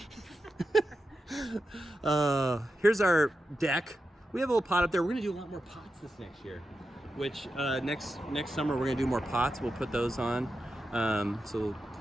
Here's our deck. We have a little pot up there. We're gonna do a lot more pots this next year. Which next summer we're gonna do more pots. We'll put those on. So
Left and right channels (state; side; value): normal; both; correlation 0.89